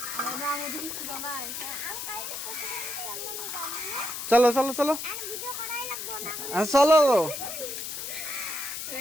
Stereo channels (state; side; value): noise; left; hiss, 6 dB below the sound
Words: চলো চলো চলো চলো,